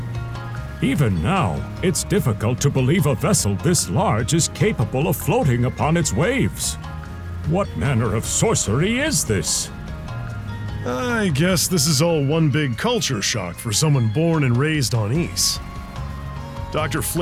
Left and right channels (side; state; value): both; identical; correlation 1.00